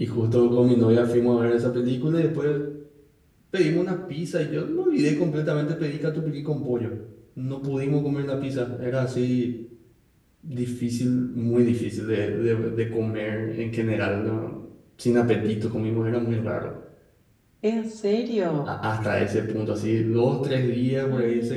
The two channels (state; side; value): identical; both; correlation 1.00